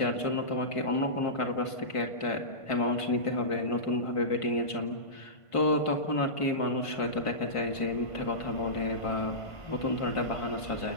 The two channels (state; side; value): late; right; 1.5 ms